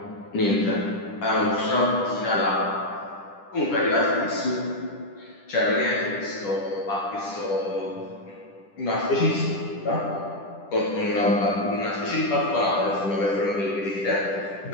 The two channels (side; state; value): right; late; 10 ms